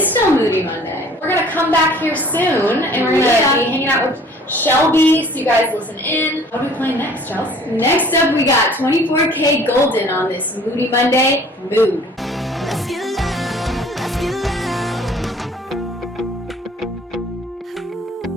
still Moody Monday. We're going to come back here soon, and we're going to be hanging out with Shelby, so you guys listen in. What are we playing next, Chelsea? Next up, we got 24K Golden on this Moody Monday mood. Let's get loud, let's get loud.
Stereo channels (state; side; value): normal; both; correlation 0.52